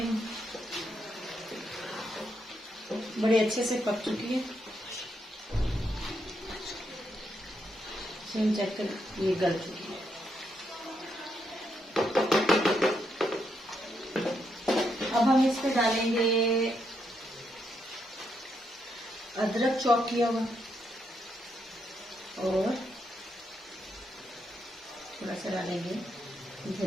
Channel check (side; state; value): both; normal; correlation 0.79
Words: बड़े अच्छे से पक चुकी है। चेक कर, ये गल चुकी है। अब हम इस पे डालेंगे अदरक चॉप किया हुआ और थोड़ा सा डालेंगे